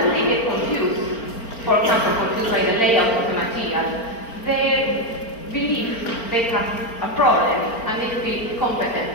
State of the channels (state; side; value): late; right; 4.4 ms